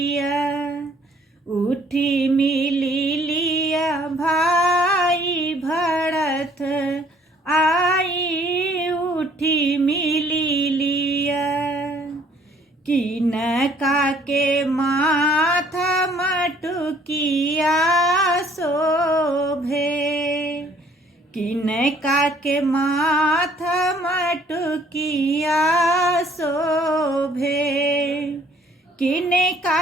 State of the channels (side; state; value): both; normal; correlation 0.60